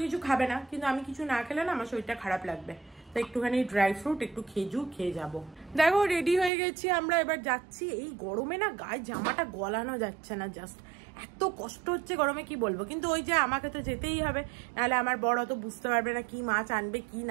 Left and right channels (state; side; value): drops out; left; at 6.5 s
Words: কিছু খাবে না, কিন্তু আমি কিছু না খেলে না আমার শরীরটা খারাপ লাগবে, তো একটুখানি ড্রাই ফ্রুট একটু খেজুর খেয়ে যাব। দেখো রেডি হয়ে গেছি আমরা, এবার যাচ্ছি। এই গরমে না গায়ে জামাটা গলানো যাচ্ছে না, জাস্ট এত কষ্ট হচ্ছে গরমে কি বলবো। কিন্তু ওই যে আমাকে তো যেতেই হবে, নাহলে আমার বড় তো বুঝতে পারবে না কি মাছ আনবে কি